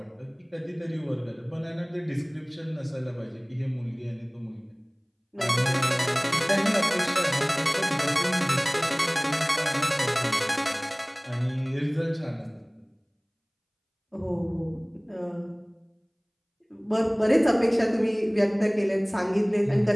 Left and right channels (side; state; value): both; identical; correlation 1.00